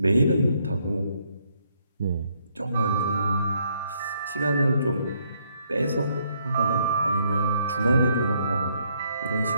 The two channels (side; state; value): both; inverted; correlation -0.71